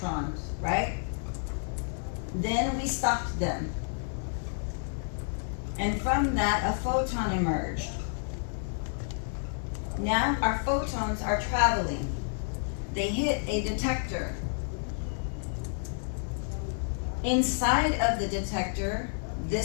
right? Then we stopped them. And from that, a photon emerged. Now our photons are traveling. They hit a detector. Inside of the detector,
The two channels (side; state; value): right; silent; digital silence